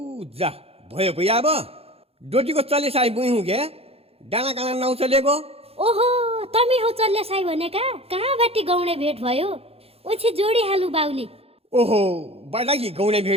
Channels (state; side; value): late; left; 0.29 ms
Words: जा भयो भई अब डोटीको चले साई बुई हुँ क्या डाँडा काँडा नाउ चलेको। ओहो तमी हो चल्ले साई भनेका कहाँ बाटी गौडे भेट भयो ओछि जोडी हालु बाउली। ओहो बडाकी गौडे